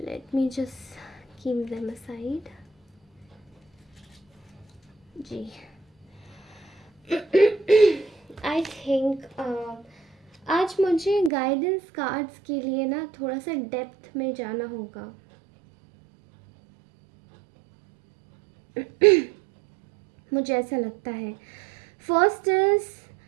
me just keep them aside, जी। आई थिंक आज मुझे गाइडेंस कार्ड्स के लिए ना थोड़ा सा डेप्थ में जाना होगा। मुझे ऐसा लगता है। First is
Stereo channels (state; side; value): drops out; left; at 11.3 s